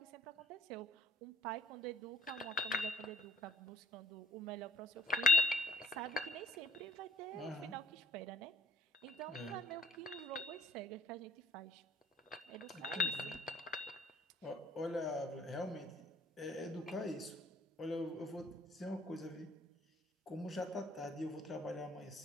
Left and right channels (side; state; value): both; normal; correlation 0.61